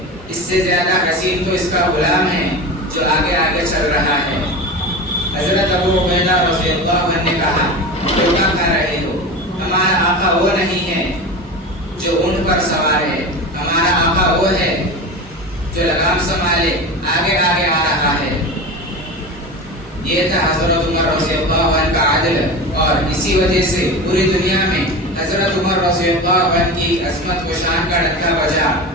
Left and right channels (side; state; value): both; normal; correlation 0.28